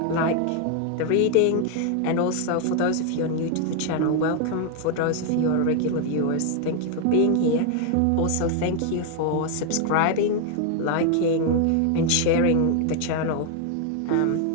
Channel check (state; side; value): different; both; correlation 0.00